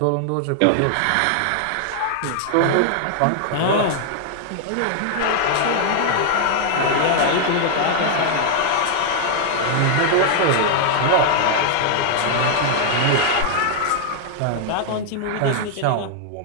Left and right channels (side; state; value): both; different; correlation -0.01